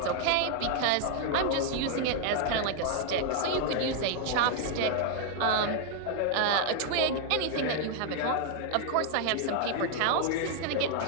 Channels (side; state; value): both; different; correlation 0.00